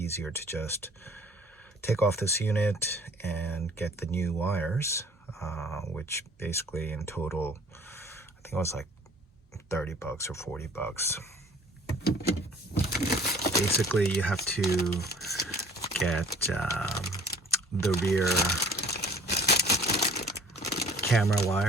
to just take off this unit and get the new wires, which basically in total, I think it was like 30 bucks or 40 bucks. Basically, you have to get the rear camera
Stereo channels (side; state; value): both; normal; correlation 0.52